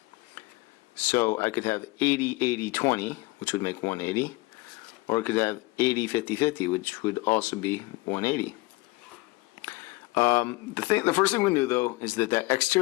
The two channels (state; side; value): quieter; right; 22.5 dB